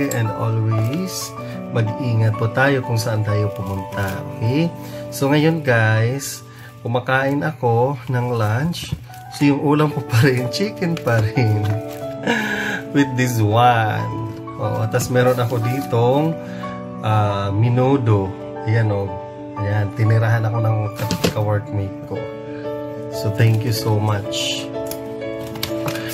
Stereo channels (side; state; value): both; identical; correlation 1.00